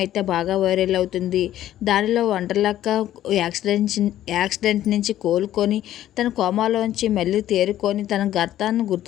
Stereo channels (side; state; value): right; quieter; 12.7 dB